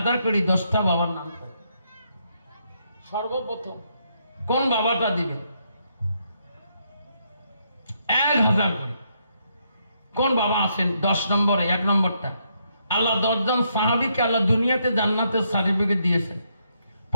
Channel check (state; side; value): inverted; both; correlation -0.76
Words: করে 10টা বাবার নাম। সর্বপ্রথম কোন বাবাটা দিবেন? 1,000 করে কোন বাবা আছেন? 10 নম্বরে 1 নম্বরটা, আল্লাহ 10 জন সাহাবীকে আল্লাহ দুনিয়াতে জান্নাতের সার্টিফিকেট দিয়েছেন।